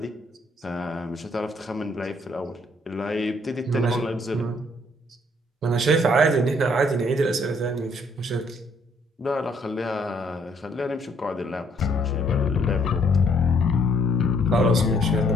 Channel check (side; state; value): both; normal; correlation 0.66